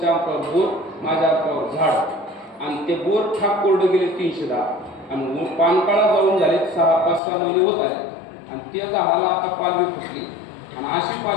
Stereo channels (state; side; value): drops out; right; at 7.2 s